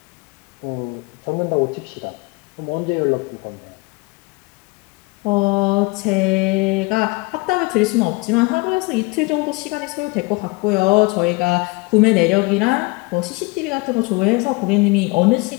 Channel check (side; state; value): right; quieter; 25.6 dB